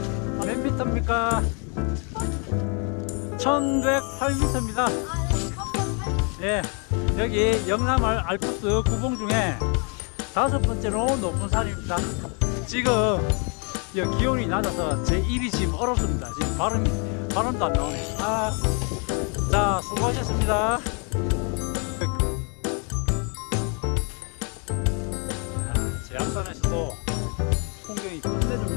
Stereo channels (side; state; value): right; quieter; 37.2 dB